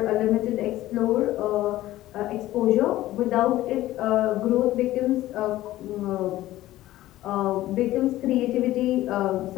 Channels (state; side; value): quieter; right; 15.5 dB